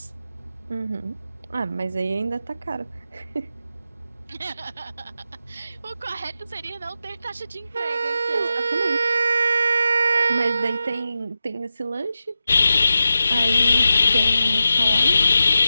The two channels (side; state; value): both; inverted; correlation -0.90